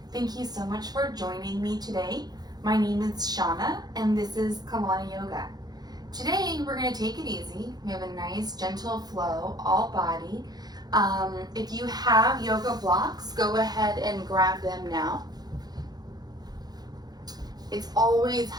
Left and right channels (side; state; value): left; late; 0.19 ms